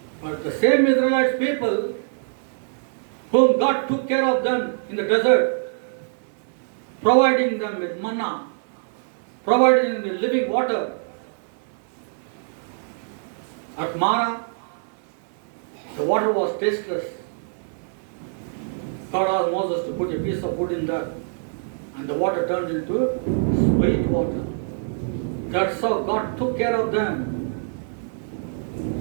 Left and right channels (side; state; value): left; silent; 62 dB below the other